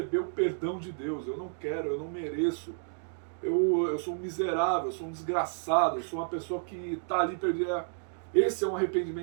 o perdão de Deus. Eu não quero, eu não mereço. Eu sou um miserável, eu sou um desgraçado, eu sou uma pessoa que está ali perdida. Esse é um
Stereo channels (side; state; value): left; silent; digital silence